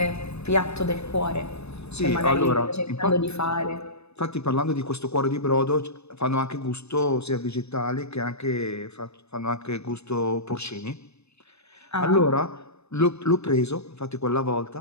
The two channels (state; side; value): late; right; 0.80 ms